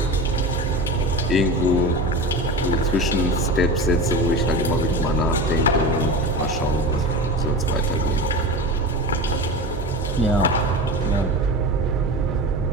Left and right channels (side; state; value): both; normal; correlation 0.28